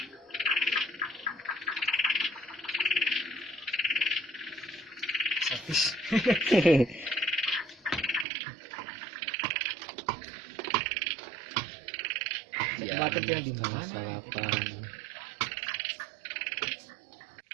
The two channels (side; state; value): left; drops out; at 8.2 s